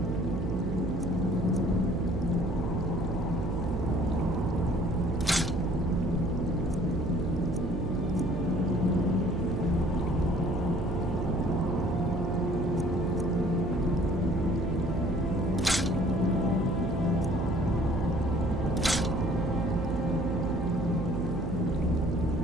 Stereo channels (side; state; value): right; noise; hum, 3 dB below the sound